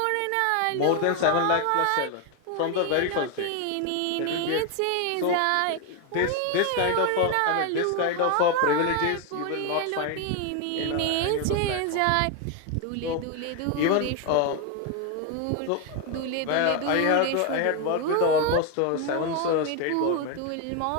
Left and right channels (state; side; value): different; both; correlation 0.01